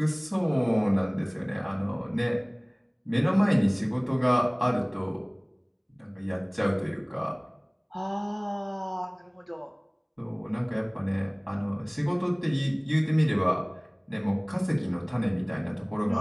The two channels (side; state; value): both; identical; correlation 1.00